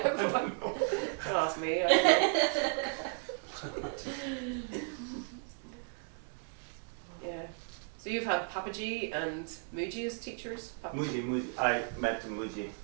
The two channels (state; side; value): silent; left; 55 dB below the other